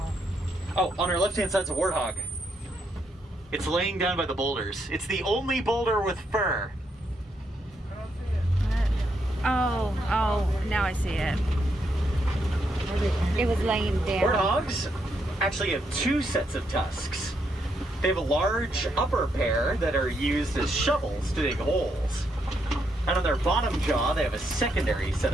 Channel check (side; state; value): both; normal; correlation 0.78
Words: Oh, on our left-hand side's a warthog. It's laying down by the boulders. It's the only boulder with fur. Oh, now I see it. It was laying down. Warthogs actually have two sets of tusks. They have a large upper pair that are used as shovels to dig holes. And on their bottom jaw, they have a secondary set